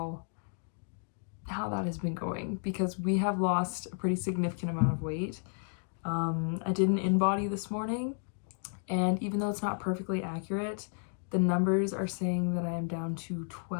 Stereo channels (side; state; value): right; silent; 56 dB below the other